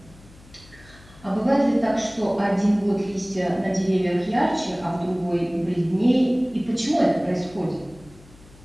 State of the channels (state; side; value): noise; left; hum, 24 dB below the sound